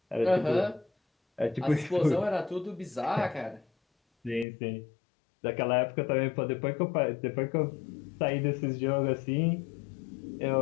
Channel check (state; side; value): drops out; right; at 4.5 s